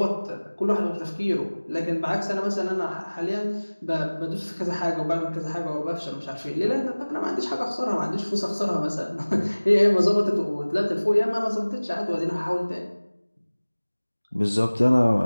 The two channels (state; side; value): inverted; both; correlation -1.00